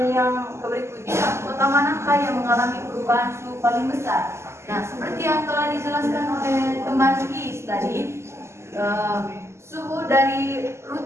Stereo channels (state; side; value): late; left; 0.13 ms